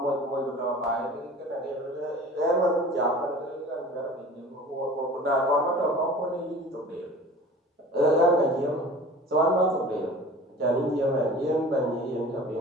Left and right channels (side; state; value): both; normal; correlation 0.42